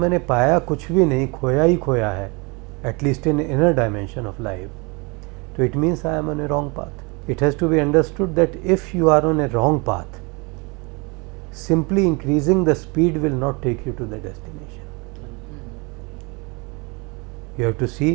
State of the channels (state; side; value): quieter; left; 29.2 dB